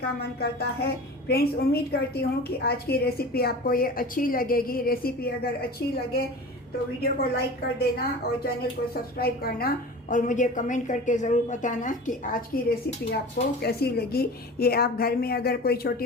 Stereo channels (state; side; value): normal; both; correlation 0.36